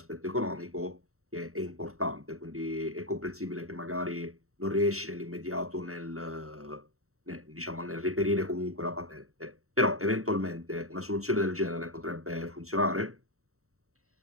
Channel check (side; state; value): left; late; 0.64 ms